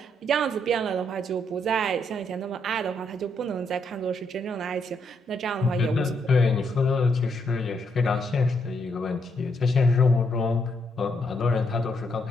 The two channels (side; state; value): both; normal; correlation 0.76